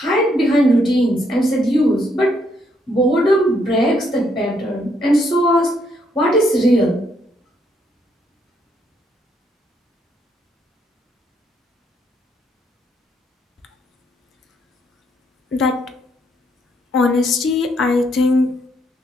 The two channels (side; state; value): both; normal; correlation 0.73